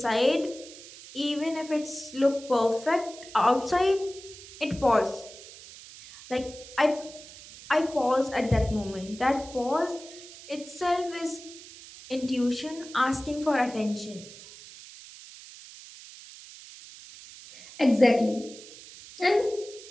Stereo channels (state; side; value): noise; right; hiss, 17 dB below the sound